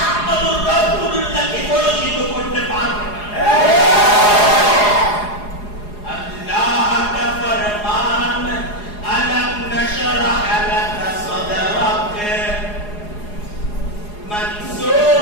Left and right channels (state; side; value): late; right; 4.8 ms